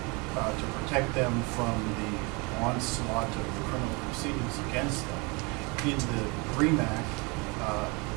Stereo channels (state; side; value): quieter; left; 28.7 dB